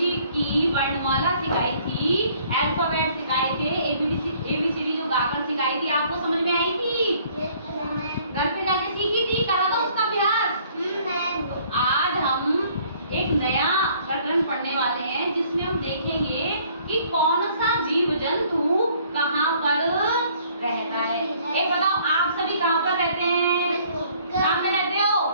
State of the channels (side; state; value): both; inverted; correlation -0.59